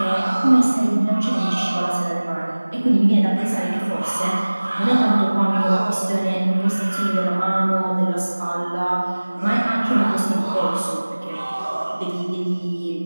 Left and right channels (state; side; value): inverted; both; correlation -1.00